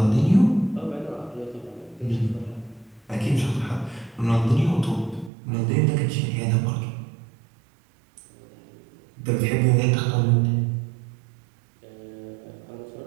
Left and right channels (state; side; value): drops out; left; at 5.3 s